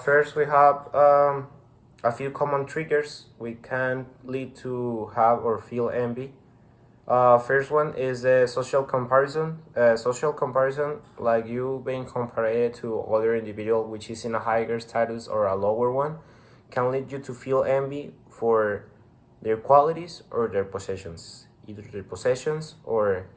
First, we have a few common triggers we can lead to have or feel envy. First one is social comparison. Social comparison, like you being compared to other individual which is in a higher status or a lower one, can lead you to feel envy for their qualities or their possessions, either their possessions or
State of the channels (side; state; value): both; identical; correlation 1.00